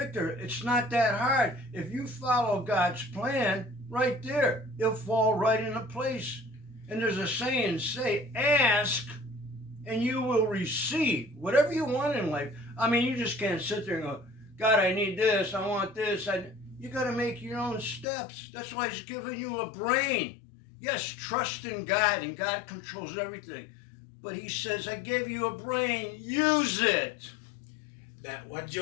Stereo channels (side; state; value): right; drops out; at 18.1 s